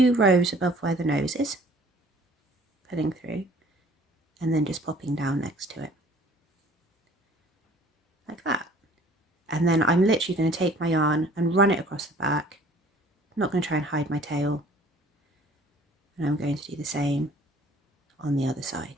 rows above where the nose is, pulling through, and then just popping down next to it, like that. And then I'm literally going to take my yarn and run it across the back. I'm not going to try and hide my tail. And I'm going to do the same on the other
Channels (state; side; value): normal; both; correlation 0.53